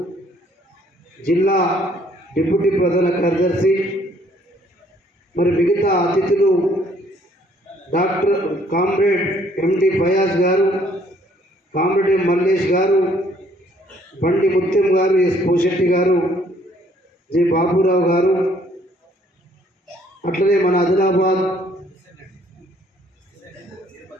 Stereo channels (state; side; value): normal; both; correlation 0.63